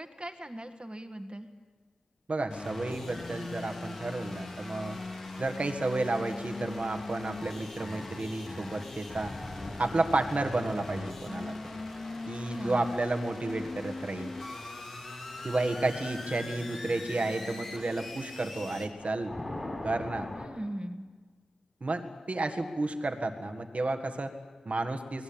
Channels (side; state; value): both; normal; correlation 0.93